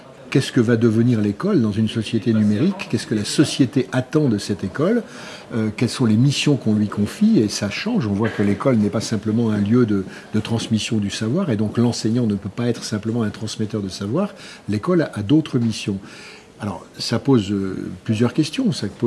Qu'est-ce que va devenir l'école dans une société numérique? Qu'est-ce que la société attend de cette école? Quelles sont les missions qu'on lui confie? Et ça change. On voit que l'école n'est pas simplement un lieu de transmission du savoir, et donc l'enseignant ne peut pas être simplement un transmetteur de savoir. L'école a d'autres missions. Alors, ça pose plusieurs questions. Ça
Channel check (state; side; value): identical; both; correlation 1.00